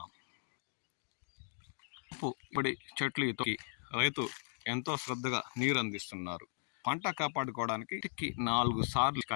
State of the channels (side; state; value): right; silent; digital silence